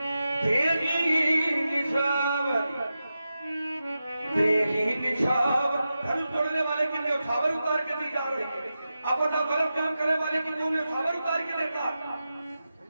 धनुष तोड़ने वाले की न्यौछावर उतार के दी जा रही है। अब बताओ गलत काम करने वाले की न्यौछावर उतार के देता?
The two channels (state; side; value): inverted; both; correlation -0.91